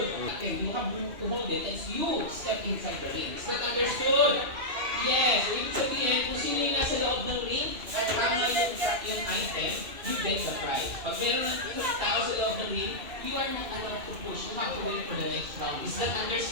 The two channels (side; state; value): left; late; 2.5 ms